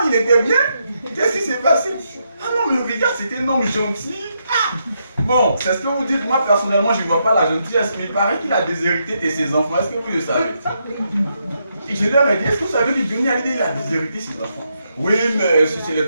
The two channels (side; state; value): both; inverted; correlation -0.80